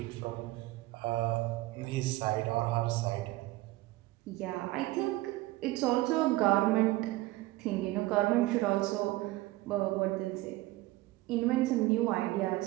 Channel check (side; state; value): left; quieter; 18.5 dB